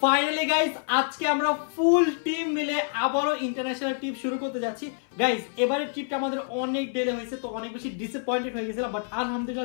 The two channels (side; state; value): right; silent; 58 dB below the other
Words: ফাইনালি গাইস, আজকে আমরা ফুল টিম মিলে আবারও ইন্টারন্যাশনাল ট্রিপ শুরু করতে যাচ্ছি। গাইস, এবারের ট্রিপটা আমাদের অনেক ডিলে হয়েছে, তো অনেক বেশি ডিসঅ্যাপয়েন্টেড হয়ে গেছিলাম, বাট